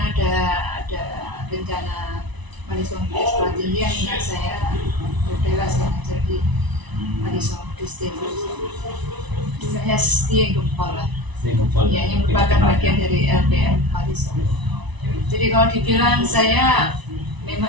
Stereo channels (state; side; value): late; left; 1.0 ms